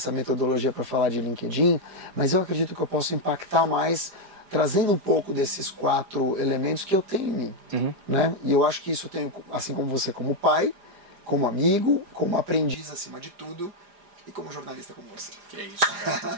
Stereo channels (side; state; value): left; late; 4.9 ms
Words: metodologia para falar de LinkedIn, mas eu acredito que eu posso impactar mais trazendo um pouco desses 4 elementos que eu tenho em mim. Né? E eu acho que isso eu tenho, assim como você, como pai, como amigo, como aprendiz acima de tudo e como jornalista como você. Que é isso,